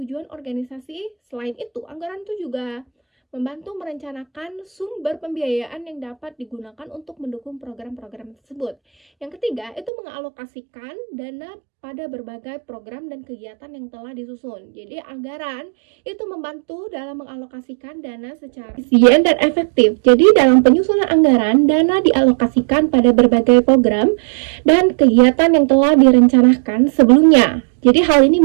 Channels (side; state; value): left; drops out; at 9.9 s